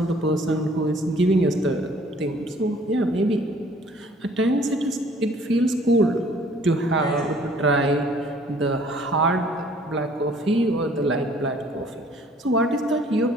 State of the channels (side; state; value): both; normal; correlation 0.56